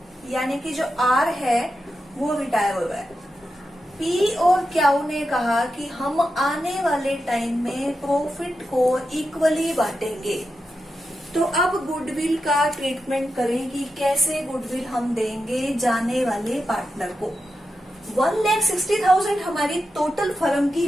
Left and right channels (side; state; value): both; normal; correlation 0.89